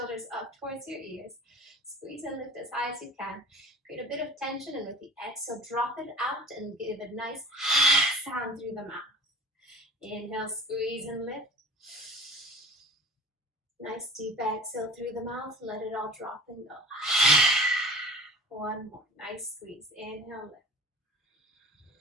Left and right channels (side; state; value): both; normal; correlation 0.42